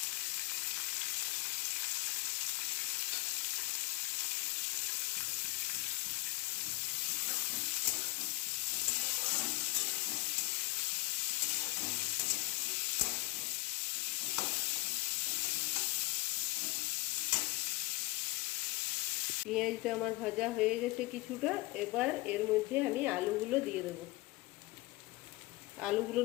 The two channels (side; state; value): right; quieter; 21.5 dB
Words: পেঁয়াজটা আমার ভাজা হয়ে গেছে কিছুটা, এবার এর মধ্যে আমি আলুগুলো দিয়ে দেব।